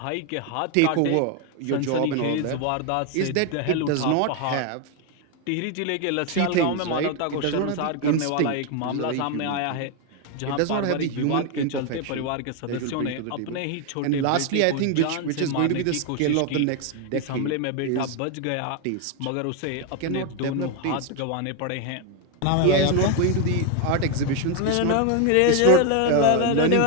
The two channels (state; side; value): different; both; correlation 0.01